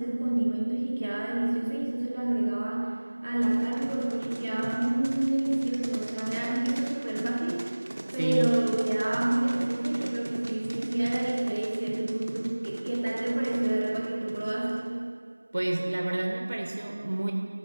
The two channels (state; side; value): inverted; both; correlation -1.00